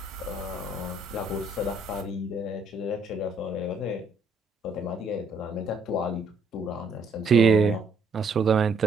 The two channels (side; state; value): left; quieter; 3.0 dB